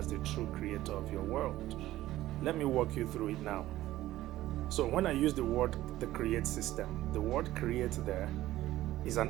the true creator of your world. Let me walk you through it now. So when I use the word the Create System, the word create there is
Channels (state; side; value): quieter; left; 15.2 dB